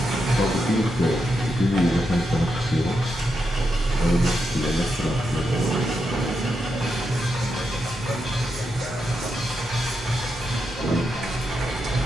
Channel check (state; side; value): normal; both; correlation 0.84